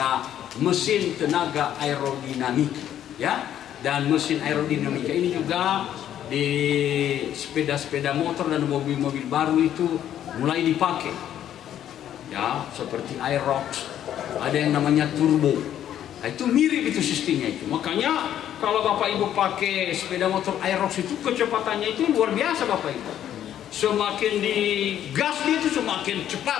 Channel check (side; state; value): right; quieter; 10.8 dB